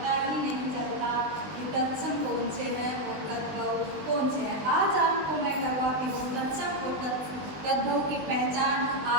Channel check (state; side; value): late; left; 20 ms